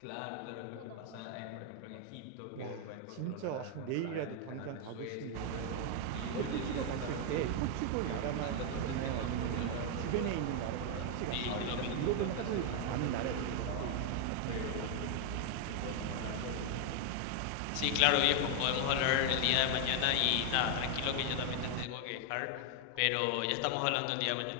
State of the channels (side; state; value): both; different; correlation 0.00